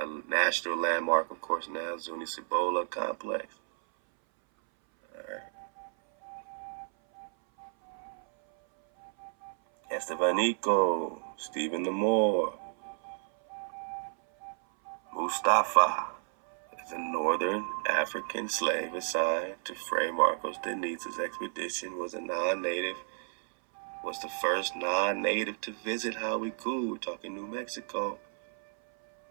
national landmark, of course, now, Zuni-Cibola complex. Alright. Estebanico, Stephen the Moor, Mustafa is a northern African slave assigned to Fray Marcos de Niza's expedition, was the first non-native to visit Hawikuh. We're talking New Mexico.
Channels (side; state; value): left; silent; 57 dB below the other